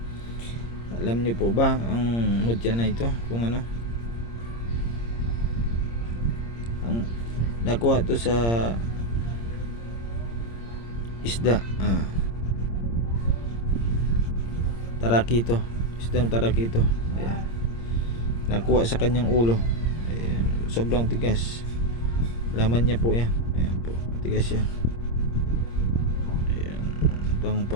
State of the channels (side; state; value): right; late; 26 ms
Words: Alam niyo po ba ang mutya na ito kung ano? Ang nakuha to sa isda. Tarakito. Isdang tarakito. Ayan. Nakuha sa kanyang ulo. Ayan, sobrang tigas. Laman niya po yan. Ayan po, tigas yan. Ayan, pang